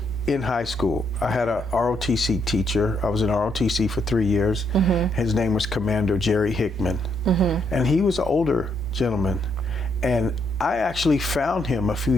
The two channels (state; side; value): normal; both; correlation 0.75